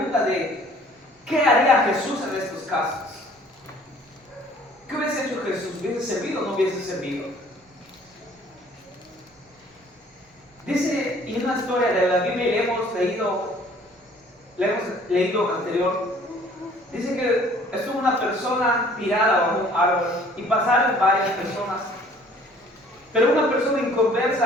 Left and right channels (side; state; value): both; normal; correlation 0.55